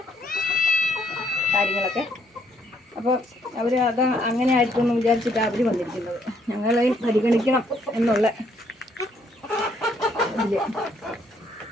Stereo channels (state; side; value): normal; both; correlation 0.69